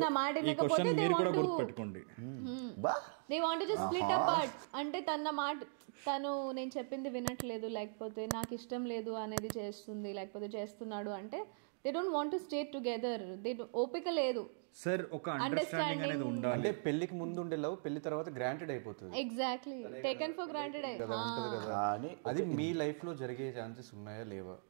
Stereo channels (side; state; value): left; silent; digital silence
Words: నా మాట వినకపోతే, they want to split apart. అంటే తను నేను చెప్పింది వినట్లేదు, లేకపోతే నాకు ఇష్టం లేదు అనేది చేస్తుంది, లేకపోతే చేస్తున్నాడు అంటే they don't want to stay together. ఓపిక లేదు సార్, ఒక అండర్స్టాండింగ్ అనేది ఉండాలి. అంటే పెళ్లికి ముందు ఉండే లవ్ పెళ్లి తర్వాత గ్రాంటెడ్ అయిపోతుంది. Exactly, taken for granted. అది మీ లైఫ్ లో జరిగే ఛాన్సెస్ ఉన్నాయా లేవా?